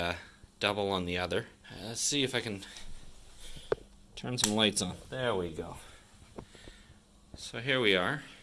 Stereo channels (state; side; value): identical; both; correlation 1.00